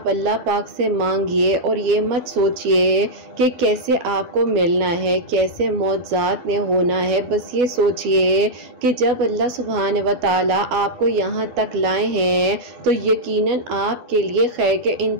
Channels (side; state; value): left; late; 12 ms